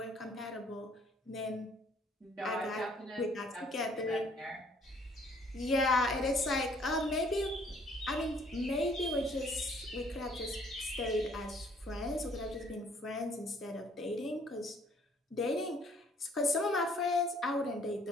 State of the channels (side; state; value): both; normal; correlation 0.61